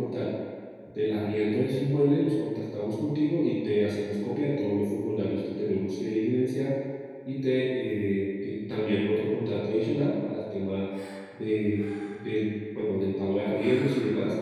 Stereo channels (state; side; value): identical; both; correlation 1.00